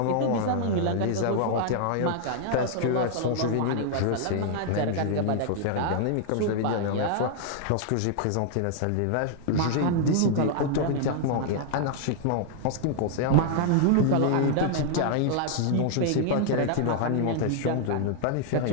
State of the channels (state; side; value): different; both; correlation 0.00